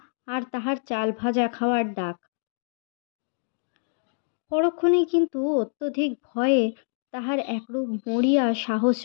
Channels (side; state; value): right; silent; digital silence